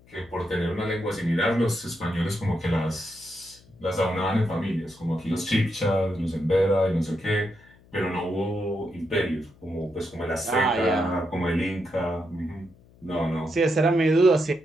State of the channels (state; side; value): noise; left; hum, 27 dB below the sound